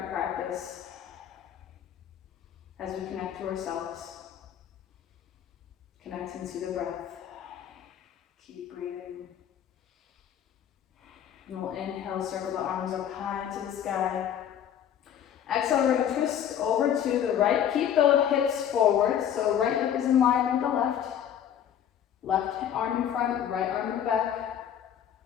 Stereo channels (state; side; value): quieter; right; 9.5 dB